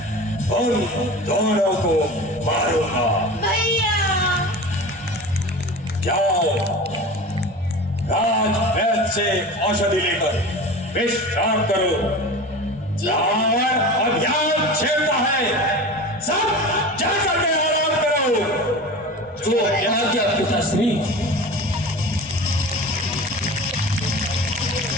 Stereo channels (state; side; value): normal; both; correlation 0.33